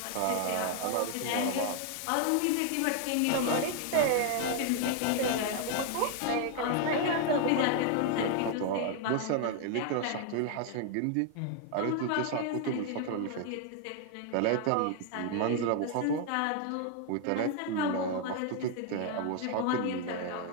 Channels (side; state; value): both; different; correlation 0.00